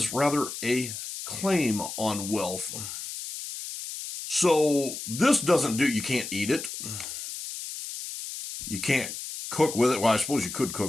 rather a claim on wealth. So this doesn't do, you can't eat it. You can't cook with it. Well, I suppose you could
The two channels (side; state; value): left; noise; hiss, 8 dB below the sound